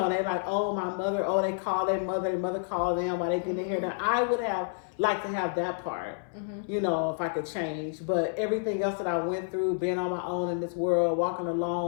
"Oh, my mother," they call their mother call them while they get their hair done. I would have liked to have that part, if I could change. But everything else that I went through, being on my own in this world, walking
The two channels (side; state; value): right; silent; 56 dB below the other